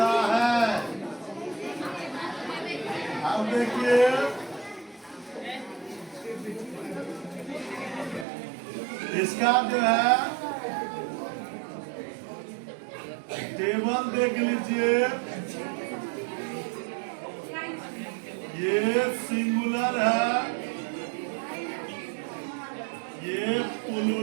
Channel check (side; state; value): left; drops out; at 8.2 s